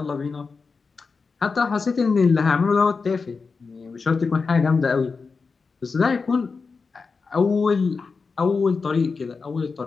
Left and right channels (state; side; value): quieter; right; 4.7 dB